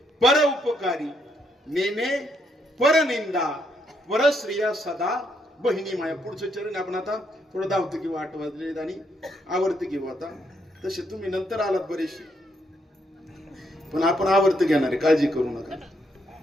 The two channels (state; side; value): normal; both; correlation 0.75